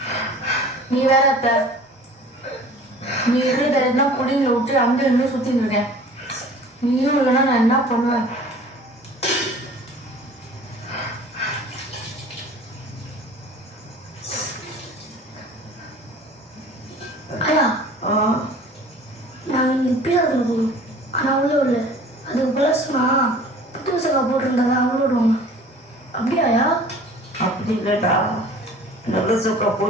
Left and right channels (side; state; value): both; normal; correlation 0.46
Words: நீ வேற அத்தை, நீ இருக்கிற குடியில விட்டு அங்கே இன்னும் சுத்தின்னு இருக்கேன். நீயும் இல்லைன்னா நான் என்ன பண்ணுவேன்? ஐயா நாங்கள் இங்கே பீஸாத்தில் போகணும். ஆனால் அவ்வளோ இல்லை. அதுக்கு ப்ளஸ்னா புத்து சக்கா போட்டிருந்தாங்க அவ்வளோ விடுவாங்க. அப்படியாயா? அப்படி இல்லைடா, நல்ல சொக்கா